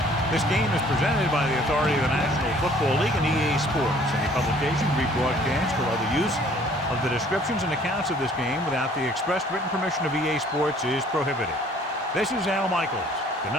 This game is presented by the authority of the National Football League and EA Sports. Any publication, rebroadcast, or other use of the descriptions and accounts of this game without the express written permission of EA Sports is prohibited. This is Al Michaels. Good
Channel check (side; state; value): both; normal; correlation 0.56